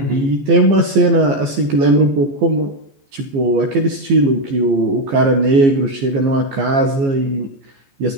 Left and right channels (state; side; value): late; left; 15 ms